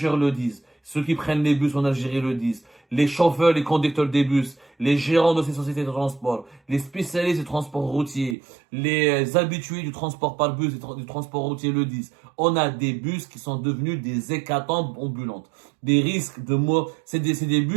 le disent, ceux qui prennent les bus en Algérie le disent, les chauffeurs, les conducteurs des bus, les gérants de ces sociétés de transport, les spécialistes du transport routier, les habitués du transport par bus et du transport routier le disent. On a des bus qui sont devenus des hécatombes ambulantes. Des risques de mort. C'est des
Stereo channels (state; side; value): drops out; left; at 8.3 s